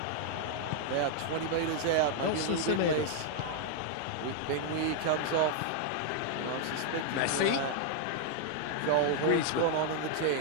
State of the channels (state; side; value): different; both; correlation 0.00